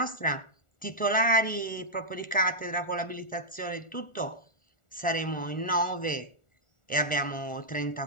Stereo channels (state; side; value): late; right; 1.4 ms